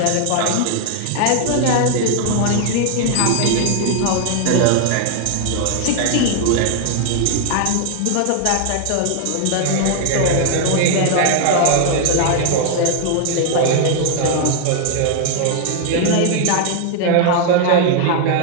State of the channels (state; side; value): different; both; correlation 0.00